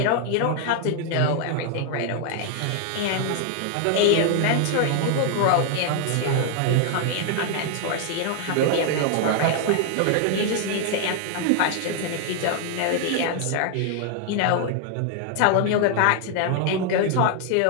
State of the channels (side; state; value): both; different; correlation 0.00